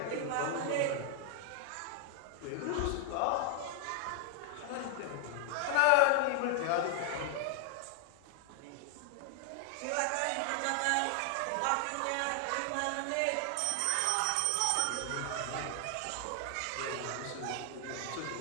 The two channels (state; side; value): different; both; correlation 0.00